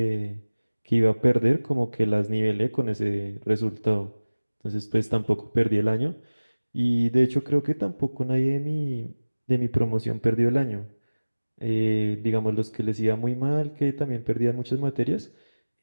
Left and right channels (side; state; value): both; inverted; correlation -1.00